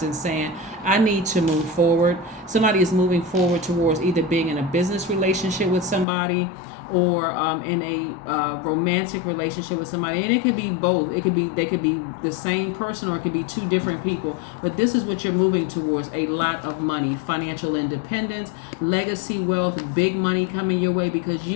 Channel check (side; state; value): right; drops out; at 6.1 s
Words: and saying, I need to move forward. Somebody is moving forward towards either being in a business relationship with somebody, or in a romantic relationship with somebody, and it could be both. They could be the same person, or it could be two different people. But this is what you're moving towards: a lot of money, financial independence, legacy wealth, big money coming your way because